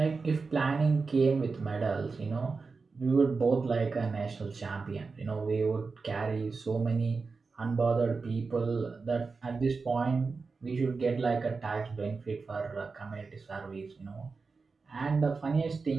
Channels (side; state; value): left; quieter; 4.4 dB